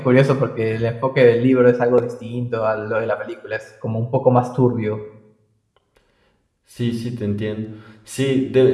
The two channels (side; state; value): both; identical; correlation 1.00